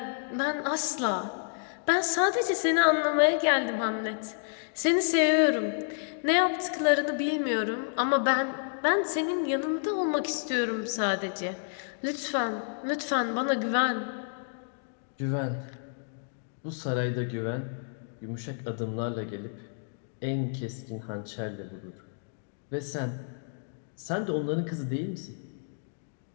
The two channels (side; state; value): right; silent; digital silence